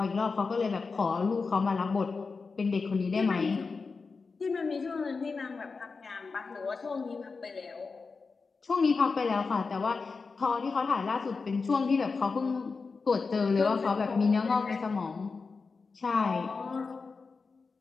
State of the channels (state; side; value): quieter; right; 4.5 dB